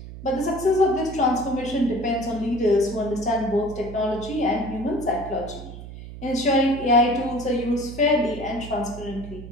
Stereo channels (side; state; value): right; noise; hum, 13 dB below the sound